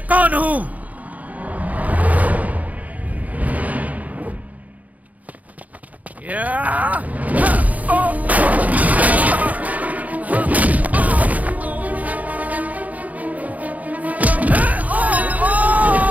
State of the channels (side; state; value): left; late; 0.074 ms